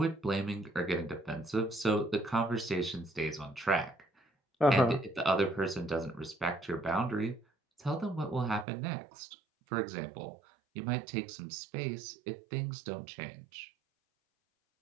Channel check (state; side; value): drops out; left; at 8.7 s